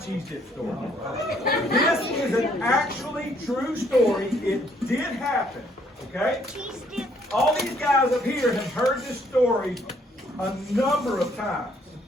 dip story. This is an actually true story. It did happen, okay? All these guys up here have heard this story a number of times,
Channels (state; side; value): normal; both; correlation 0.66